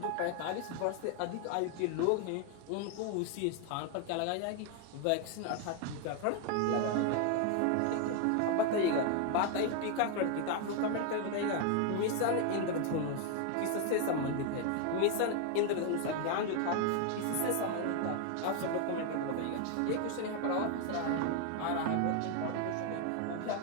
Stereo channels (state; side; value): different; both; correlation 0.00